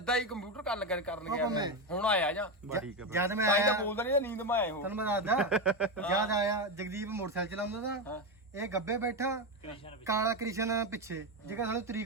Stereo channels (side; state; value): both; normal; correlation 0.12